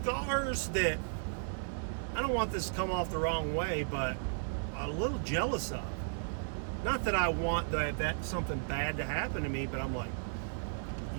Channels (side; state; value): left; silent; digital silence